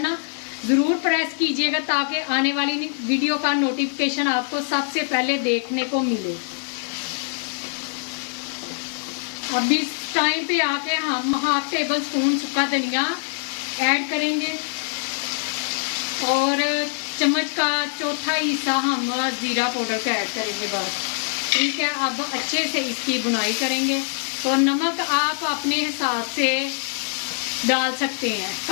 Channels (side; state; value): right; silent; 63 dB below the other